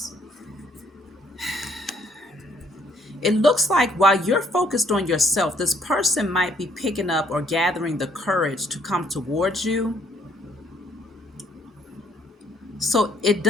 it looks like while you're focused on yourself, this person might be picking up or gathering the courage to come towards you. So it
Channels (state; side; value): normal; both; correlation 0.66